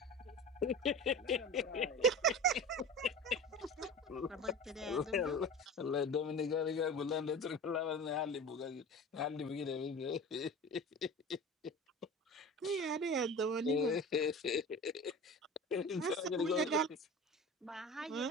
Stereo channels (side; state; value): both; normal; correlation 0.34